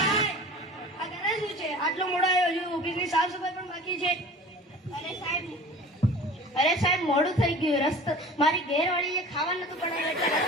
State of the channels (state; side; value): normal; both; correlation 0.41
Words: અગર શું છે આટલો મોડો આવ્યો છું, ઓફિસની સાફ સફાઈ પણ બાકી છે. અરે સાહેબ મોડું થઈ ગયું. રસ્તો મારી ઘેરવાળીએ ખાવા નતું બનાવ્યું એટલે